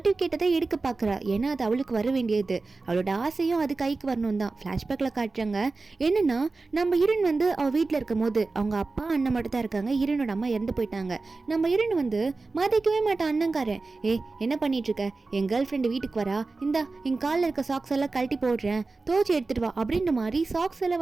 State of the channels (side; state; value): left; quieter; 3.7 dB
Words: தான் எடுக்க பாக்குறா. ஏன்னா அது அவளுக்கு வர வேண்டியது, அவளோட ஆசையும் அது கைக்கு வரணும் தான். ஃப்ளாஷ்பேக்கில் காட்டுறாங்க. என்னன்னா நம்ம ஹீரோயின் வந்து அவள் வீட்டில் இருக்கும் போது அவங்க அப்பா அண்ணன் மட்டும் தான் இருக்காங்க. ஹீரோனோட அம்மா இறந்து போயிட்டாங்க. நம்ம ஹீரோயின் வந்து மதிக்கவே மாட்டான் அண்ணங்காரன். என்ன பண்ணிட்டு இருக்க, என் கேர்ள் ஃப்ரெண்டு வீட்டுக்கு வரா, இந்தா என் காலில் இருக்க சாக்ஸ் எல்லாம் கழட்டி போடுறேன், தோச்சி எடுத்துட்டு வா அப்படின்ற மாதிரி சாக்ஸ் எல்லாம்